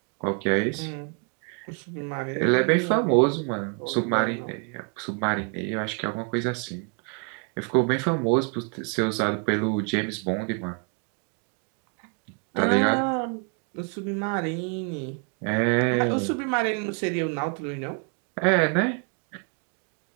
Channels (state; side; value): quieter; left; 36.7 dB